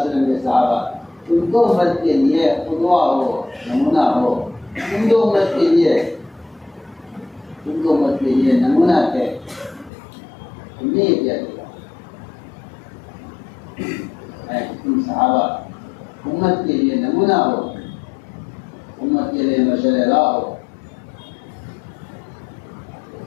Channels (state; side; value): drops out; right; at 9.9 s